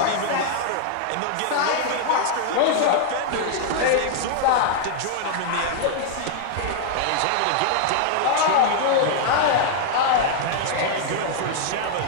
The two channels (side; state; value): both; different; correlation 0.00